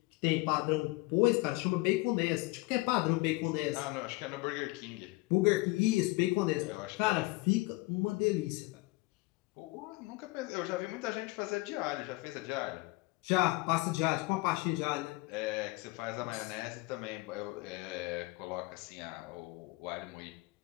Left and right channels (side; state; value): right; quieter; 23.1 dB